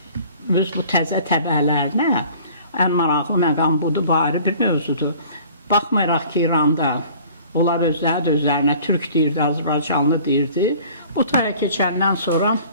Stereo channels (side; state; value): both; inverted; correlation -0.49